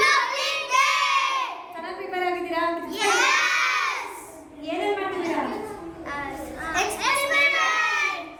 ಚೆನ್ನಾಗಿ ಪ್ರಿಪೇರ್ ಆಗಿದ್ದೀರಾ? ಏನೇನು ಮಾಡ್ತಿದ್ದೀರಾ?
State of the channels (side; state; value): both; identical; correlation 1.00